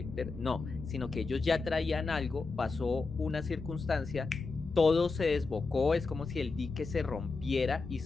no, sino que ellos ya traían algo, pasó una circunstancia, todo se desbocó, es como si el dique se rompiera y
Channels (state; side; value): quieter; right; 4.1 dB